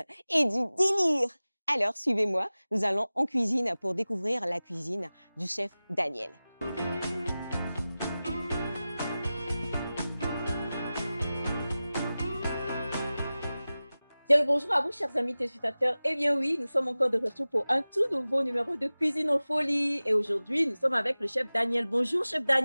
et du délire. Alors, suivez-moi, nous allons en cuisine pour découvrir la cuisine du chef Daniel. Bien le bonjour à vous, chers amis téléspectateurs. Eh bien oui, nous sommes encore de retour pour un tout nouveau numéro de Cuisine en folie. Et aujourd'hui, nous sommes avec le chef Daniel. Bonjour, chef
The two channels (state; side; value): inverted; both; correlation -0.97